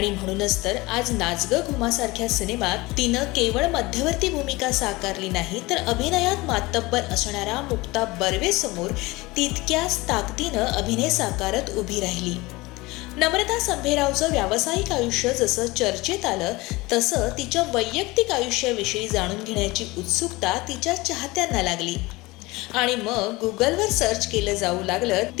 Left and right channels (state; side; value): quieter; right; 22.0 dB